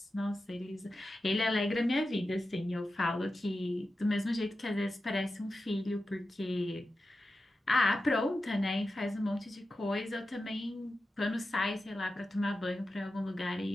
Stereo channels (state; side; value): normal; both; correlation 0.92